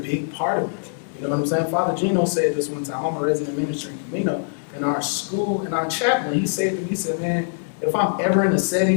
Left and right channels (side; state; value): right; silent; digital silence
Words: part of it. You know what I'm saying? Father Gino said this one time. I'm a resident minister in Camino. In our school, in our chaplain, he said to me, he said, man, if I'm ever in a